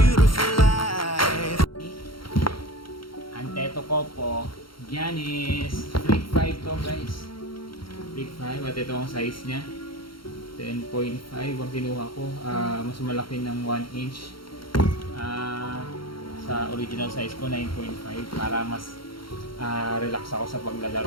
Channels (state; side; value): late; right; 0.73 ms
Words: life. Anteto ko po, Giannis Freak 5 to guys. Freak 5 at ito ang size niya. 10.5 ang kinuha ko. Mas malaki ng 1 inch. Sa original size ko 9.5 para mas relax ako sa